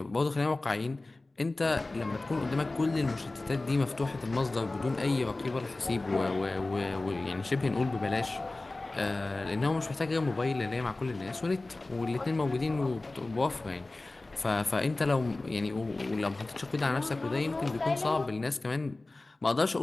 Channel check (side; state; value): right; quieter; 3.0 dB